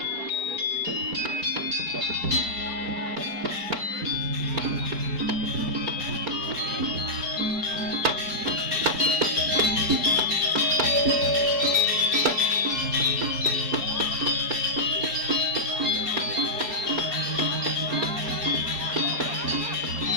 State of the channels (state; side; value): late; left; 4.7 ms